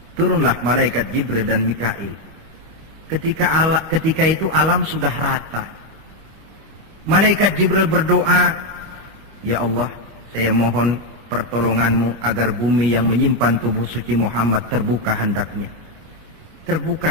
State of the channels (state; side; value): late; left; 25 ms